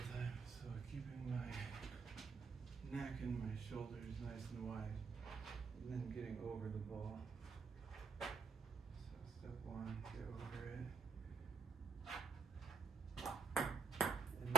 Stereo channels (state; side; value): quieter; left; 5.1 dB